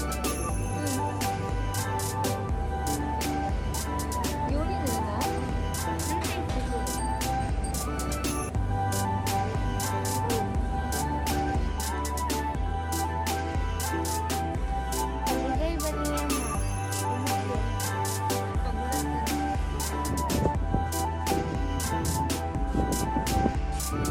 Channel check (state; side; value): identical; both; correlation 1.00